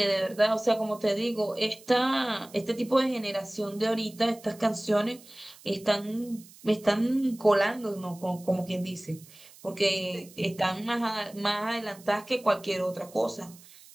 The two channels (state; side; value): noise; right; hiss, 22 dB below the sound